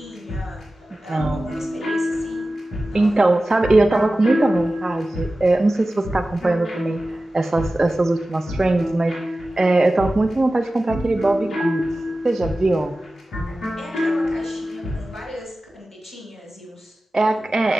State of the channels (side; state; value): both; normal; correlation 0.95